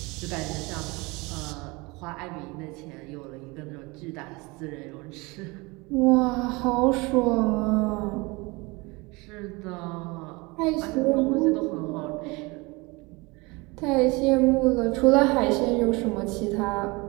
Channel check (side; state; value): left; quieter; 25.4 dB